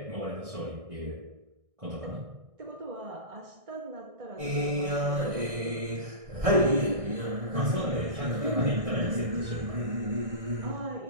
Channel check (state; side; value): late; left; 1.6 ms